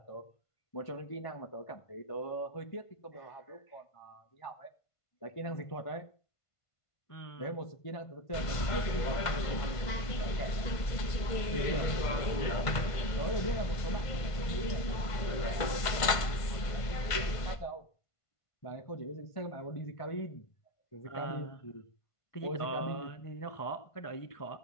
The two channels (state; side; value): late; right; 1.5 ms